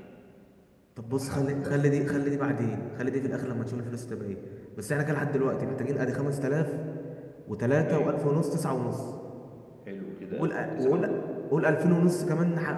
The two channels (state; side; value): identical; both; correlation 1.00